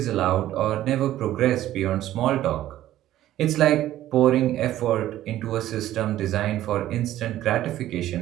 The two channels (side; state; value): left; quieter; 13.5 dB